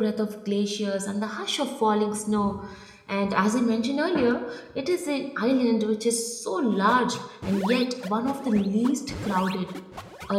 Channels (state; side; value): identical; both; correlation 1.00